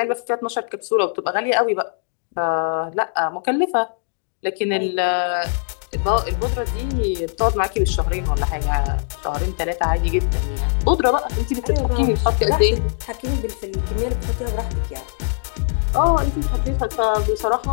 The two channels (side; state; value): right; silent; digital silence